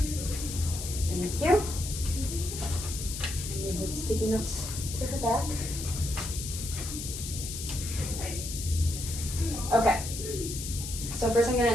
Thank you. Move the sticky notes to her back. Okay. So first I'm gonna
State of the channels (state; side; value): noise; left; hiss, 7 dB below the sound